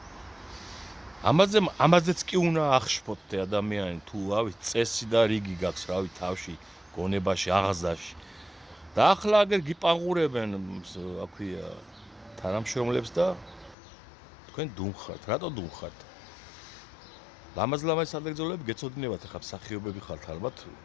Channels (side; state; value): right; drops out; at 13.8 s